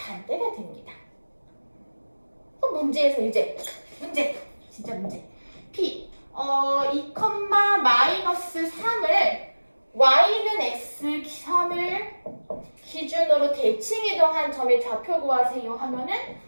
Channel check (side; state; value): both; inverted; correlation -1.00